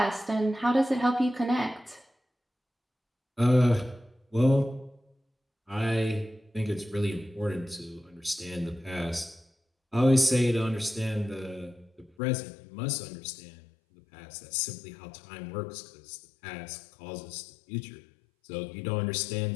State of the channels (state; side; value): drops out; right; at 12.1 s